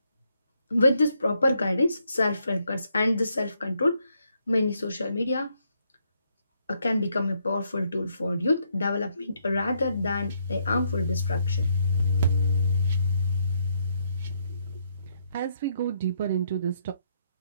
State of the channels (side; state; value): both; inverted; correlation -0.75